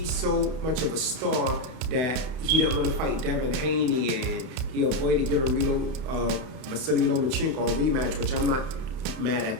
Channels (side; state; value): left; late; 31 ms